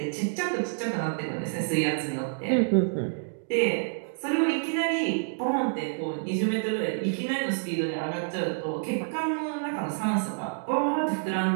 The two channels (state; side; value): silent; left; digital silence